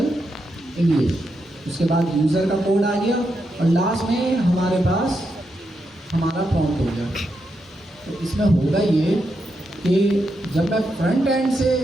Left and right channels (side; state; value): both; normal; correlation 0.84